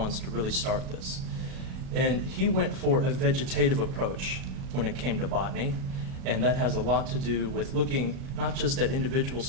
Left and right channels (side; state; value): left; late; 37 ms